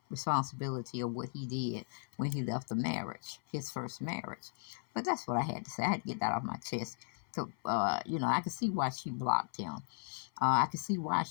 responsibility of what he did when he left the marriage, his first marriage. But that's what I had to say. I had to get that off my chest. So, I can see why she blocked him. I can see why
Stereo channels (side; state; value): right; silent; 54 dB below the other